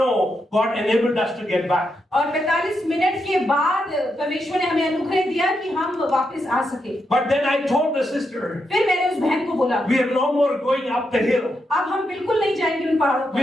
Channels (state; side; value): normal; both; correlation 0.83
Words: God enabled us to get back. और 45 मिनट के बाद परमेश्वर ने हमें अनुग्रह दिया कि हम वापस आ सके। But then I told the sister, फिर मैंने उस बहन को बोला, we are no more going up the hill. अब हम बिल्कुल नहीं जाएंगे उन पहाड़ों पर।